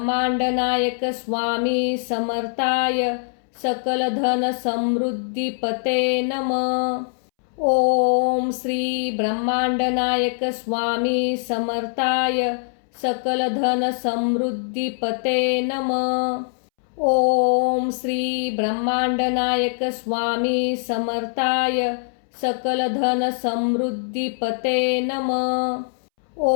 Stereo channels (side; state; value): right; silent; 64 dB below the other